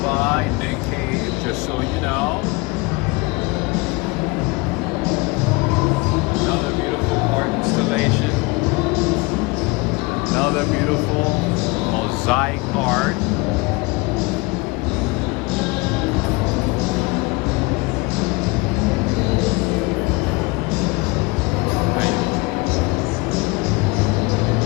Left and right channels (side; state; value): right; quieter; 25.5 dB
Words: by Nick Cave, just so you know. Another beautiful art installation. Another beautiful mosaic art.